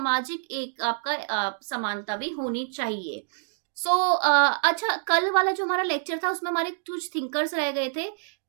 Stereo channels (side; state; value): left; silent; digital silence